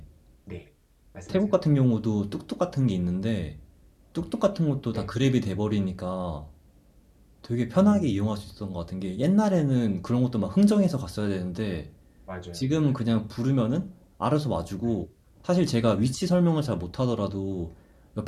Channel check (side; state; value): both; identical; correlation 1.00